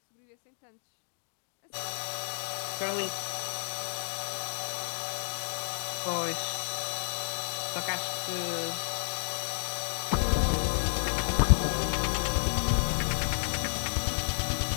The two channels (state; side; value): silent; right; digital silence